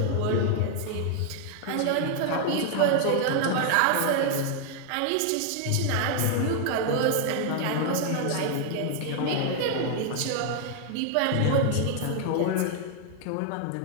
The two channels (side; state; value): both; different; correlation 0.00